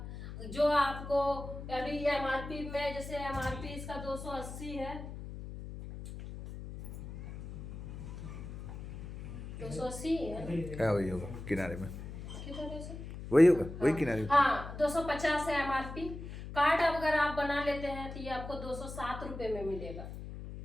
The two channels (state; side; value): noise; left; hum, 10 dB below the sound